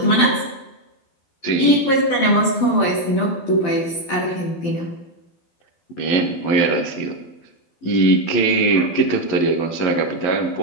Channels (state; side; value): late; right; 12 ms